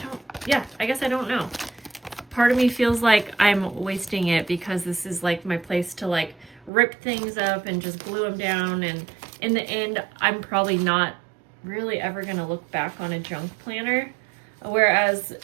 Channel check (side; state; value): left; drops out; at 6.7 s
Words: I guess I don't know. Part of me feels like I'm wasting it because this is like my place to like rip things up and just glue them down, and in the end, I'm probably not really ever going to look back on a junk planner, whereas